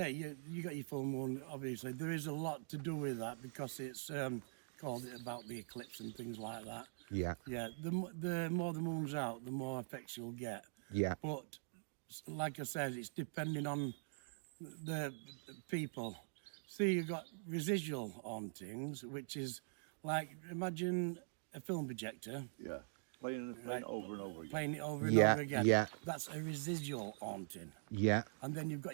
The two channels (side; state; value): left; silent; digital silence